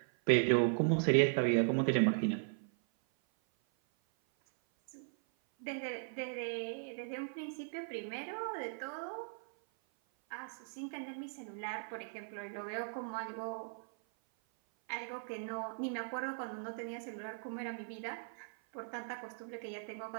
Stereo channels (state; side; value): silent; left; 52 dB below the other